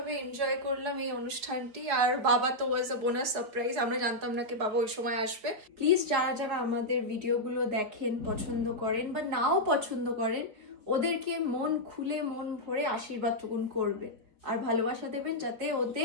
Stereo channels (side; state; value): left; late; 4.7 ms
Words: এনজয় করলাম এই অনুষ্ঠানটি। আর বাবা তো ওয়াজ আ বোনাস সারপ্রাইজ, আমরা জানতাম না কি বাবা ওই সময় আসবে। প্লিজ যারা যারা আমাদের ভিডিওগুলো দেখেন, পছন্দ করেন বা নাও পছন্দ করেন, ওদেরকে মন খুলে মন ভরে আশীর্বাদটুকুন করবেন আর ভালোবাসা দেবেন, যাতে